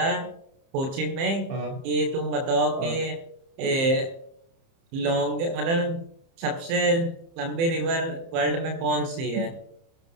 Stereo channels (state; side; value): late; left; 30 ms